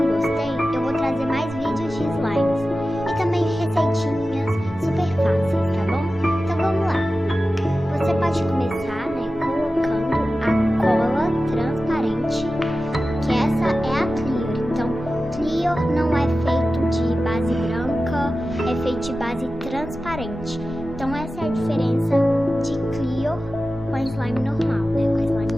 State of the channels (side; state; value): both; normal; correlation 0.94